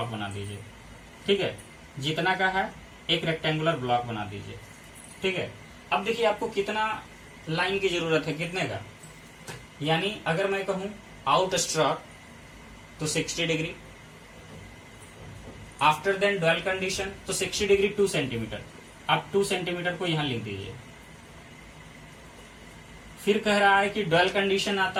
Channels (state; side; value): identical; both; correlation 1.00